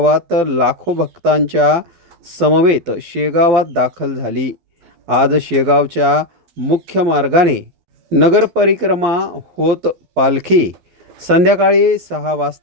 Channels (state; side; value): late; left; 12 ms